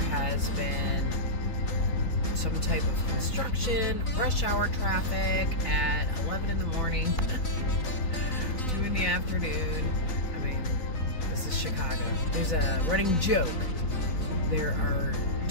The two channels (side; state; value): right; late; 3.9 ms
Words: been some type of construction, rush hour traffic at 11 in the morning, 2 in the afternoon. I mean, this is Chicago. There's a running joke. There are